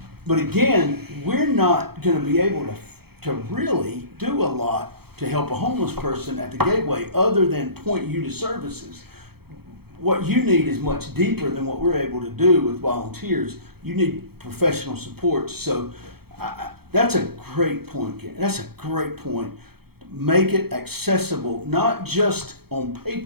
But again, we're not going to be able to really do a lot to help a homeless person at the Gateway other than point you to services. What you need is much deeper than what we're able to do with volunteers. You need professional support. So that's a great point, Karen. That's a great point. Make it accessible, not just on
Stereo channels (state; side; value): late; left; 0.96 ms